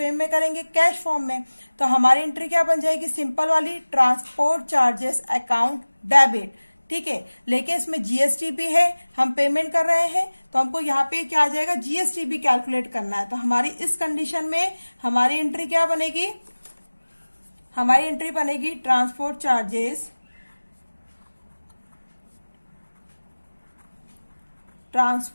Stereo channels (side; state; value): both; inverted; correlation -1.00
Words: में करेंगे? कैश फॉर्म में। तो हमारी एंट्री क्या बन जाएगी? सिंपल वाली, ट्रांसपोर्ट चार्जेस अकाउंट डेबिट। ठीक है। लेकिन इसमें GST भी है, हम पेमेंट कर रहे हैं, तो हमको यहाँ पे क्या आ जाएगा? GST भी कैलकुलेट करना है। तो हमारी इस कंडीशन में हमारी एंट्री क्या बनेगी? हमारी एंट्री बनेगी transport charges